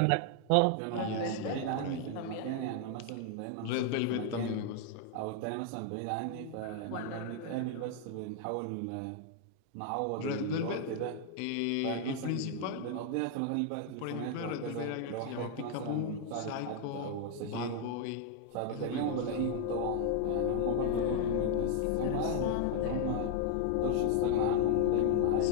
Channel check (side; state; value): both; different; correlation 0.00